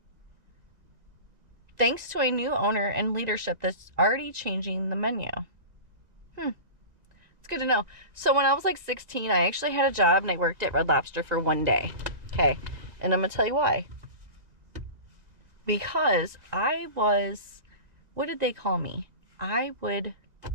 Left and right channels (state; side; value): late; left; 1.9 ms